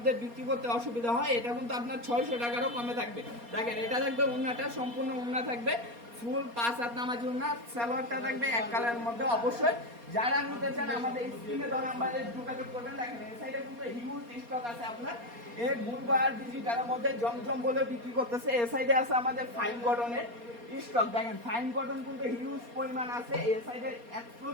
বিক্রি করতে অসুবিধা হয়। এটা কিন্তু আপনার 600 টাকারও কমে থাকবে। দেখেন এটা থাকবে উন্নাটা, সম্পূর্ণ উন্না থাকবে, ফুল 5 হাত নামাজি উন্না, সালোয়ারটা থাকবে এক কালারের মধ্যে। অবশ্যই যারা নিতে চান আমাদের স্ক্রিনে দেওয়া নাম্বারে যোগাযোগ করবেন। দেখেন এই সাইডে কিন্তু হিউজ স্টক আছে আপনার এই গুলবার ডিজিটালের মধ্যে জমজম বলে বিক্রি করতেছে। এই সাইডে আছে আমাদের ফাইন কটনের স্টক। দেখেন ফাইন কটন কিন্তু হিউজ পরিমাণ আছে। এই সাইডে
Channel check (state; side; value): late; left; 4.3 ms